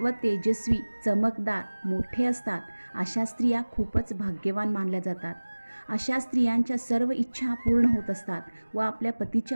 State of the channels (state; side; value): inverted; both; correlation -1.00